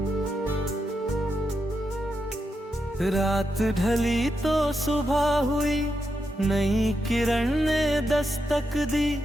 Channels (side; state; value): both; normal; correlation 0.85